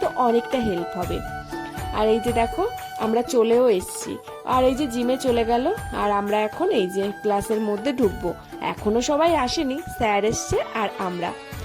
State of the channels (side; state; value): both; identical; correlation 1.00